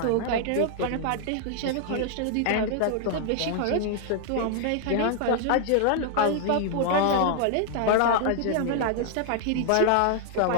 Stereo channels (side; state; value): both; different; correlation 0.00